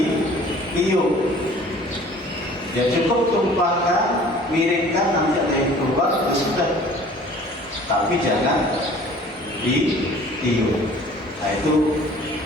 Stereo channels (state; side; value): normal; both; correlation 0.49